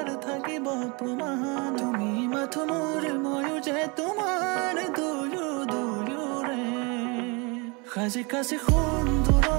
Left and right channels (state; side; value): quieter; left; 29.6 dB